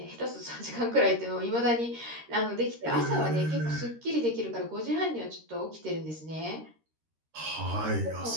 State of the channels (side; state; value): left; late; 13 ms